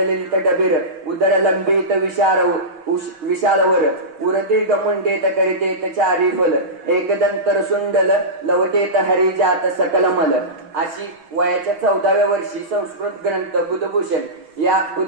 डबीर उदर लंबित विशालवर उरदीर्घ मुंडेत करितेत चारी फल एकदंतर सुंडल लवटेत हरिजात सकल मल. अशी वयाच्या 14व्या वर्षी संस्कृत ग्रंथ बुधभूषण या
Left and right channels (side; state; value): left; late; 6.5 ms